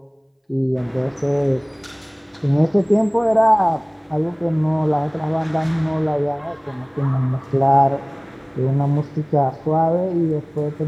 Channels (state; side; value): identical; both; correlation 1.00